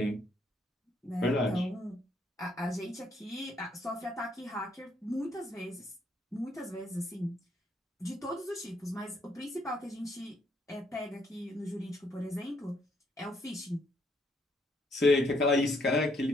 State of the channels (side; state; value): both; normal; correlation 0.71